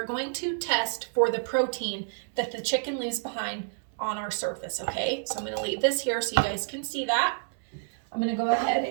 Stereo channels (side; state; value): left; silent; digital silence